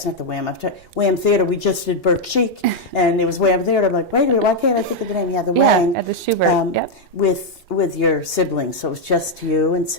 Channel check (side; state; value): both; normal; correlation 0.00